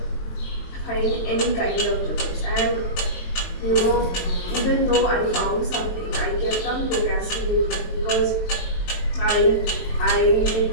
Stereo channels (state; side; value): late; right; 23 ms